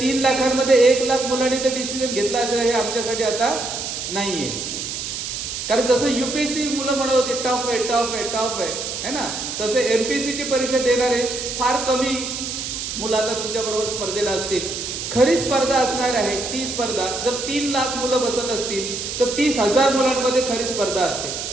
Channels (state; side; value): noise; right; hiss, 5 dB below the sound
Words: लाखांमध्ये 1 लाख मुलांनी ते डिसिजन घेतला असेल हे आमच्यासाठी आता नाहीये. कारण जसं युपीएससी मुलं म्हणत होते टफ आहे टफ आहे टफ आहे ना, तसे एमपीएससीची परीक्षा देणारे फार कमी मुलं आता तुमच्या बरोबर स्पर्धेला असतील. खरी स्पर्धा असणार आहे ती स्पर्धा, जर 3 लाख मुलं बसत असतील तर 30,000 मुलांमध्ये खरी स्पर्धा असते.